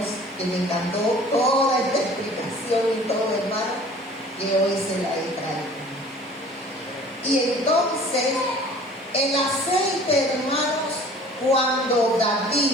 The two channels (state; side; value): normal; both; correlation 0.48